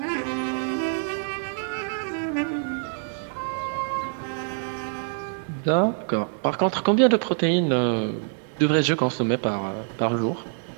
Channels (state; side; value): silent; left; 61 dB below the other